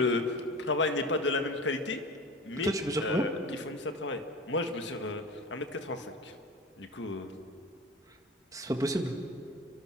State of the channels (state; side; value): normal; both; correlation 0.33